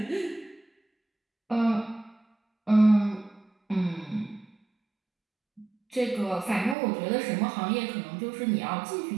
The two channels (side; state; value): left; drops out; at 6.8 s